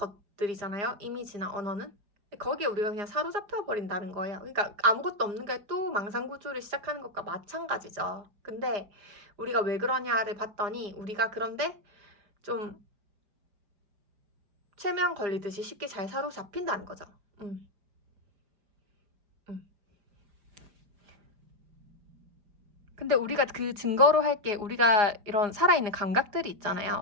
이미지나 언어는. 거기에 우리가 그냥 사로잡혀 버린다는 거예요. 그러니까 아무것도 없는 게 또 망상구조를 시작하는 것과 마찬가지죠. 근데 우리가 왜 그러냐를 봤더니 우리가 그런데 좀 최면 걸리듯이 쉽게 잘 사로잡힌다는 거죠. 근데 우리가 그 증거로 할 게 우리가 이런 살아있는 감각들이 있잖아요.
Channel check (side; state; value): left; late; 4.9 ms